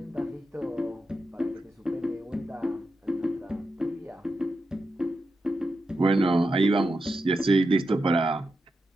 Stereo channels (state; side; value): normal; both; correlation 0.88